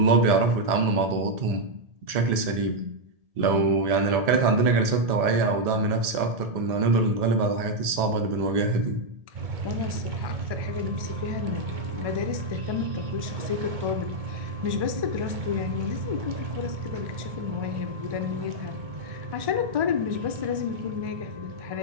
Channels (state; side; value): late; left; 1.7 ms